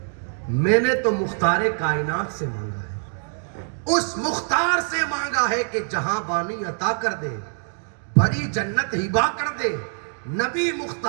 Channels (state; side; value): silent; left; 63 dB below the other